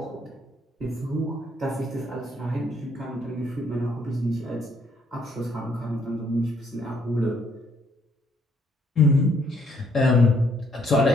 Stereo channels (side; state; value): both; normal; correlation 0.68